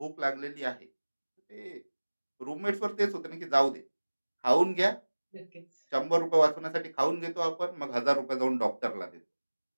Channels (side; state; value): both; inverted; correlation -1.00